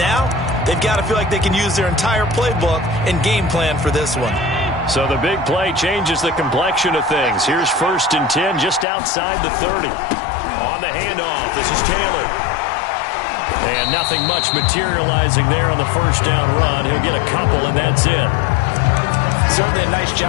they've got to feel like they can use their entire playbook and game plan for this one. So the big play changes the complexion of things. Here's 1st and 10 just outside the 30. On the handoff, this is Taylor. And nothing much materializing there on the first down run. He'll get a couple, and that's it. Certainly a nice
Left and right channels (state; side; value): drops out; right; at 8.8 s